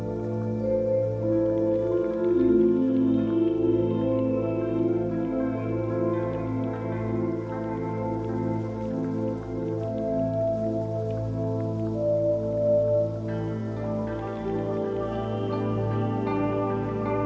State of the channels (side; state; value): both; identical; correlation 1.00